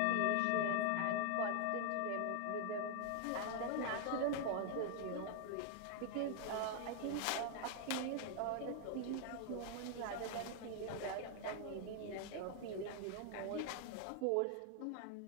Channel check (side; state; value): both; different; correlation 0.00